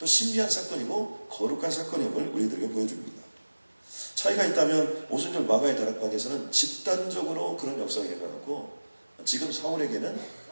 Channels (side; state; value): both; inverted; correlation -1.00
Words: 신비한 사건이고 거룩한 사건임을 우리들에게 보여줍니다. 차이가 있다면 오순절 마가의 다락방에서는 집단적으로 그런 역사가 일어났고 지금 사울에게는